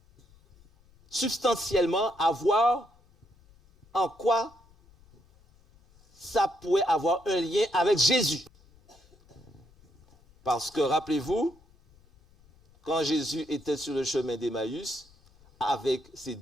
substantiellement à voir en quoi ça pourrait avoir un lien avec Jésus. Parce que, rappelez-vous, quand Jésus était sur le chemin d'Emmaüs avec ses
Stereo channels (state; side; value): noise; left; rumble, 29 dB below the sound